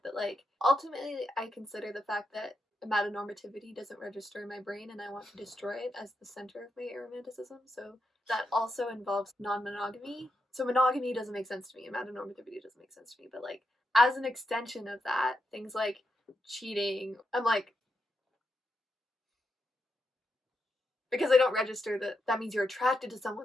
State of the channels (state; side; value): normal; both; correlation 0.85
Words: that, like, ultimately I consider the fact that amatonormativity doesn't register in my brain and I want to destroy it as the center of my aromanticism. So that also involves non-monogamy. So monogamy doesn't make sense to me. Amatonormativity doesn't make sense to me. But like as an extension of that, things like cheating, I'm like, because I don't register that that means you're attracted to